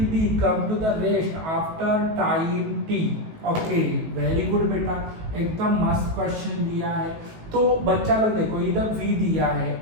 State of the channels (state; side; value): late; left; 18 ms